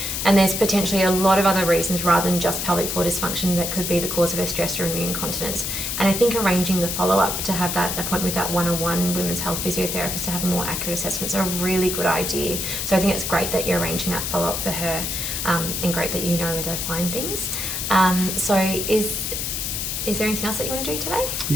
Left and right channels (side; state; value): left; noise; hiss, 2 dB below the sound